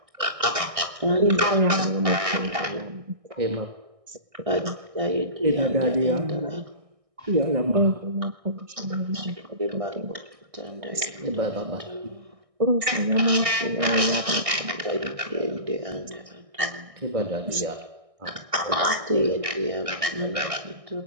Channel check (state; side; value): late; left; 1.6 ms